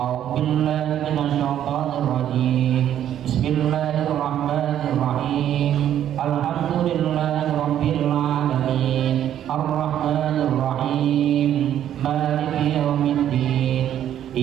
minasyaitonir rajim. Bismillahirrahmanirrahim. Alhamdulillahirabbil alamin. Arrahmanir rahim. Maliki yaumiddin.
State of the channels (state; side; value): quieter; left; 10.7 dB